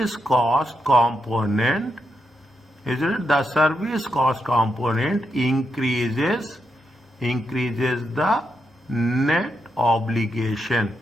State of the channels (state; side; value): normal; both; correlation 0.83